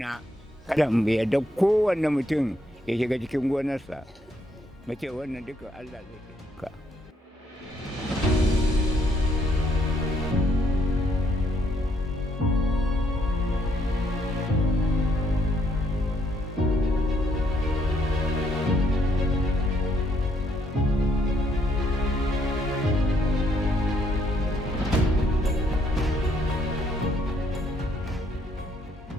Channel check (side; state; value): both; normal; correlation 0.71